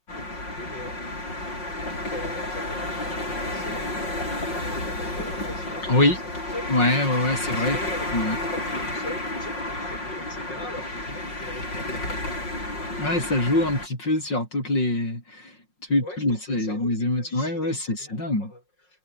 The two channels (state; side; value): late; right; 5.5 ms